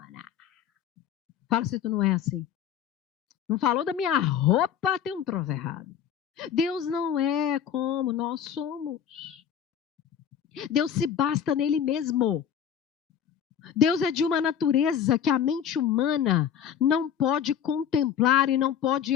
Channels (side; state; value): right; quieter; 8.8 dB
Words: Fala se tu não é assim. Não falou da minha roupa, tem um troço errado. Deus não é como nós somos. Deus se basta nele mesmo. Deus é de uma natureza que a mente humana não pode contemplar e não pode